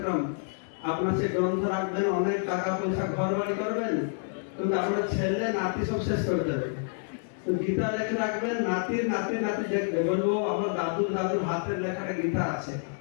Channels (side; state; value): right; silent; 59 dB below the other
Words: আপনার সে গ্রন্থ রাখবেন, অনেক টাকা পয়সা ঘর বাড়ি করবেন, কিন্তু আপনার ছেলে নাতি সব শেষ করে দেবে। তো গীতা লেখে রাখবেন, নাতির নাতি লিখবে, বলবো আমার দাদুর হাতের লেখাটা গীতা আছে।